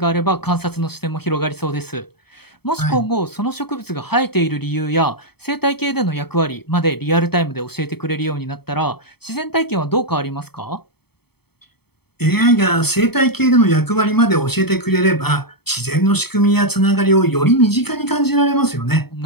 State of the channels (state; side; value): late; right; 0.97 ms